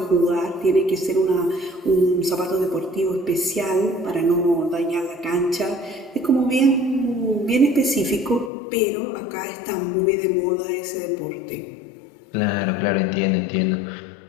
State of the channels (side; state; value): right; drops out; at 8.5 s